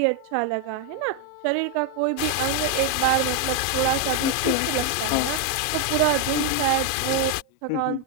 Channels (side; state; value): both; different; correlation 0.01